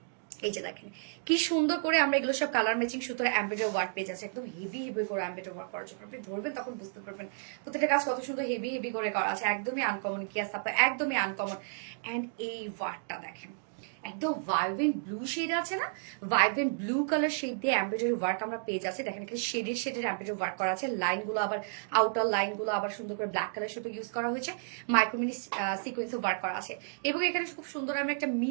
এই যে দেখেন কি সুন্দর করে আমরা এগুলো সব কালার ম্যাচিং সুতোর এমব্রয়ডারি ওয়ার্ক পেয়ে যাচ্ছে, একদম হেভি হেভি করে এমব্রয়ডারি ওয়ার্ক করা। যখন আপনি ধরবেন তখন বুঝতে পারবেন প্রত্যেকটা কাজ কত সুন্দর হেভি হেভি করে করা আছে, একদমই আনকমন। কি আছে আপনার, একদমই আনকমন। এন্ড এই ওয়ার্কটা দেখেন, একদম ভাইব্রেন্ট ব্লু শেড আছে না, ভাইব্রেন্ট ব্লু কালার শেড দিয়ে এমব্রয়ডারি ওয়ার্ক আমরা পেয়ে যাচ্ছি। দেখেন এখানে শেডের এমব্রয়ডারি ওয়ার্ক করা আছে। লাইনগুলো আবার আউটার লাইনগুলো আবার সুন্দর করে ব্ল্যাক কালার সুতো ইউজ করা হয়েছে, মাইক্রোমিনি সিকোয়েন্সে ওয়ার্ক করা আছে। এবং এখানে খুব সুন্দর আমরা একটা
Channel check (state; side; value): silent; left; digital silence